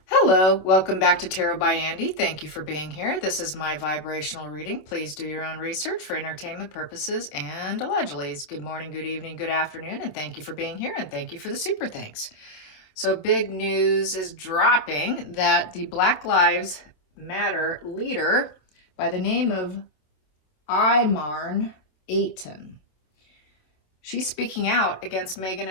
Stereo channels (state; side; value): late; right; 27 ms